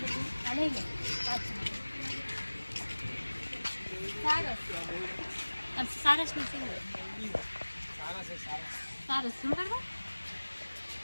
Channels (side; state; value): both; inverted; correlation -1.00